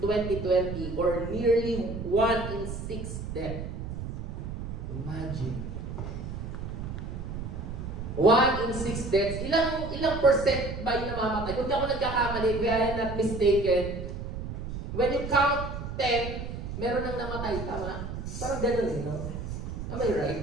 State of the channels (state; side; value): noise; right; rumble, 6 dB below the sound